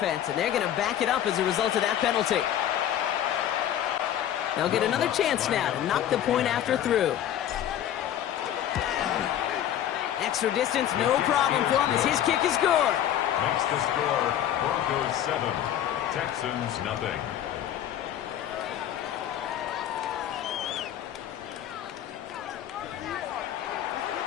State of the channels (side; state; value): right; quieter; 11.0 dB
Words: and they're going to back it up as a result of that penalty. They'll get another chance now to knock the point after through. Extra distance, no problem for him as his kick is good. Makes the score Broncos 7, Texans nothing.